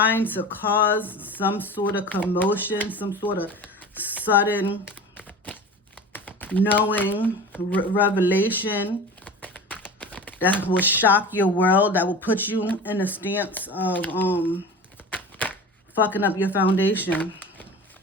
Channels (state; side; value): normal; both; correlation 0.34